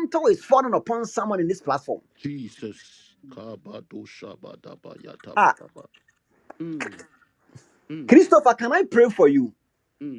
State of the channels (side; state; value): both; identical; correlation 1.00